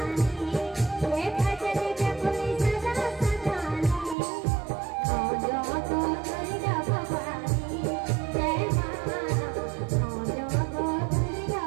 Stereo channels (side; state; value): left; drops out; at 4.2 s